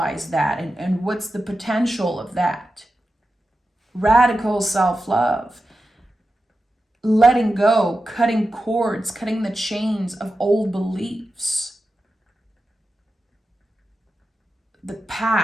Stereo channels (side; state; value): both; normal; correlation 0.91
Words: that, and what's the potential of that? Radical self-love. Letting go, cutting cords, cutting the chains of old beliefs. The